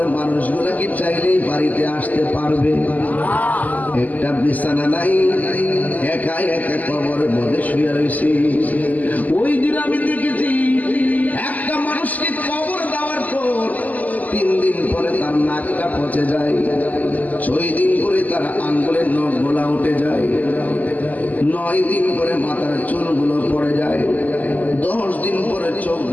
মানুষগুলা কি চাইলেই বাড়িতে আসতে পারবে? একটা বিছানা নাই, একা একা কবরের মধ্যে শুয়ে রয়েছে। ওই দিন আমি দেখেছি একটা মানুষকে কবর দেওয়ার পর 3 দিন পরে তার নাকটা পচে যায়, 6 দিন পরে তার আঙ্গুলের নখগুলা উঠে যায়, 9 দিন পরে মাথার চুলগুলো পড়ে যায়, 10 দিন পরে চোখ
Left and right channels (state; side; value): late; right; 0.079 ms